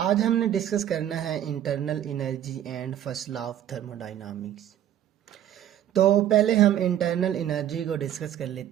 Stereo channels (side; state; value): left; quieter; 11.2 dB